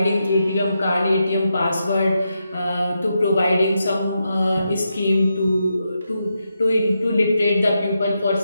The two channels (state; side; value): inverted; both; correlation -0.85